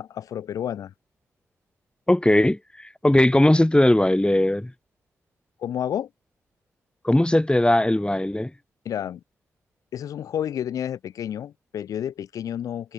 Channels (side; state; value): both; normal; correlation 0.95